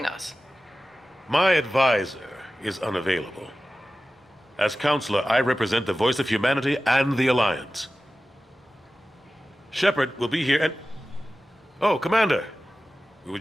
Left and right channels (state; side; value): normal; both; correlation 0.96